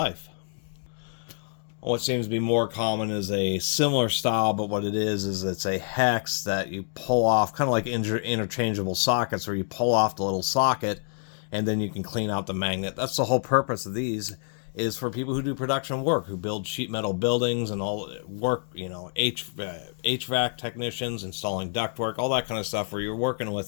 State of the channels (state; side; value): silent; right; 60 dB below the other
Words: What seems to be more common is a similar style, but what it is it's a hex that you pull off, kind of like interchangeable sockets, where you pull off the little socket and then you can clean out the magnet. That's the whole purpose of these, is for people who do production work, who build sheet metal buildings and all work, you know, HVAC technicians, installing ductwork, all that kind of stuff, where you're working